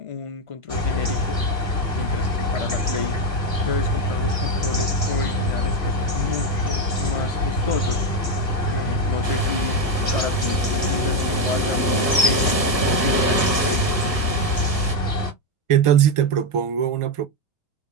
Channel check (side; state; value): left; late; 1.4 ms